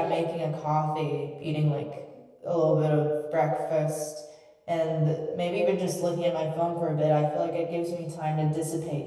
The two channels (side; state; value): both; identical; correlation 1.00